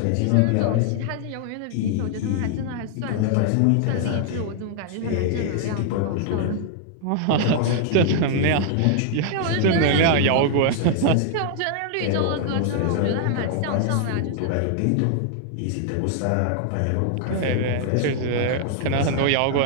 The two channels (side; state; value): both; different; correlation -0.01